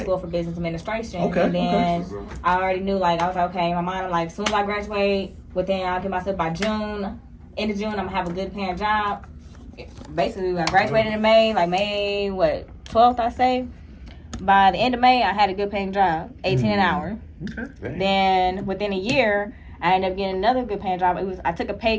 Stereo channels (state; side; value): identical; both; correlation 1.00